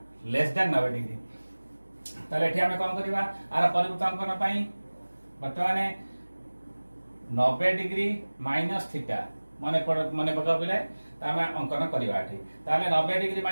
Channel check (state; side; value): inverted; both; correlation -1.00